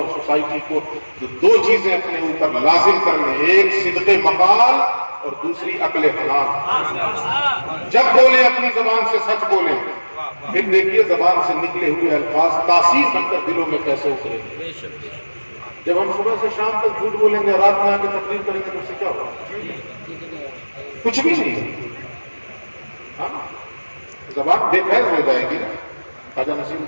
سوسائٹی کو، تو دو چیزیں اپنے اوپر لازم کر لیں، ایک صدق مقال اور دوسری عقل حلال۔ جب بولیں اپنی زبان سے سچ بولیں، پھر دیکھیے زبان سے نکلے ہوئے الفاظ تاثیر بن کر دلوں میں کیسے اتریں گے۔ جب ہم صبح سے شام تک جھوٹ بولیں گے، رات میں آ کے تقریر کریں گے تو اس سے کیا ہوگا؟ کچھ بھی نہیں۔ ہاں زبان بے فیض ہو جائے گی نا۔ خواجہ نصیر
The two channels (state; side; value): inverted; both; correlation -1.00